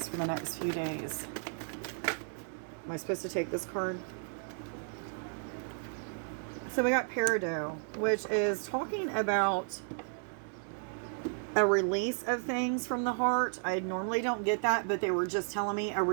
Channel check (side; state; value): left; silent; 55 dB below the other